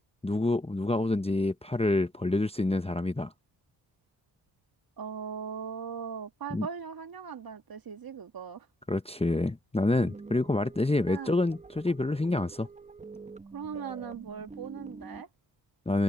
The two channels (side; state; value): both; normal; correlation 0.78